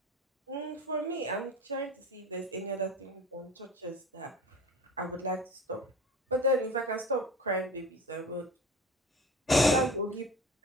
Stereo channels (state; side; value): normal; both; correlation 0.37